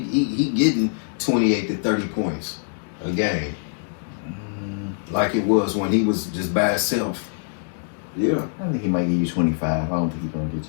getting 28 to 30 points a game, like it was when he was just by himself. Yeah. I think he might give you 25. I don't think he's gonna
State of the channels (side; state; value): right; silent; digital silence